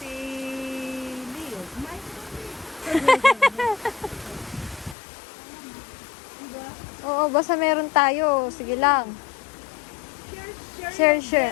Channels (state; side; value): drops out; right; at 5.0 s